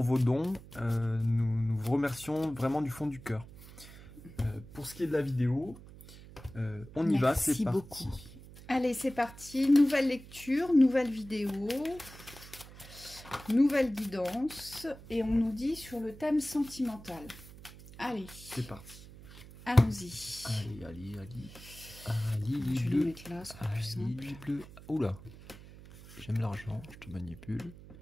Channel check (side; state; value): right; noise; hum, 18 dB below the sound